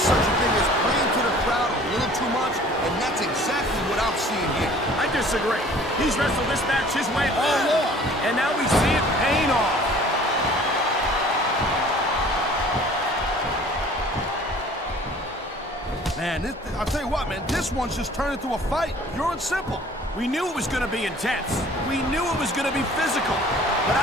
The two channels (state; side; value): normal; both; correlation 0.50